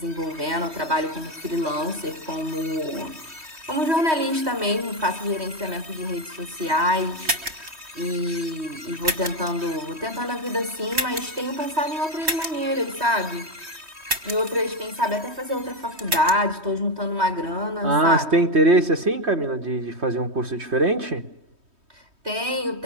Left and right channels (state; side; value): late; left; 3.2 ms